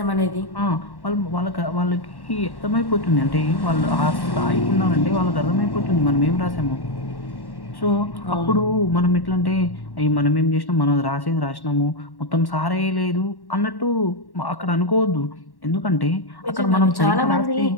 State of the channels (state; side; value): late; right; 1.1 ms